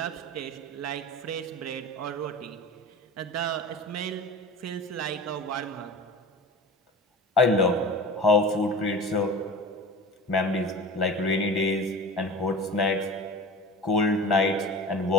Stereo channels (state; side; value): normal; both; correlation 0.34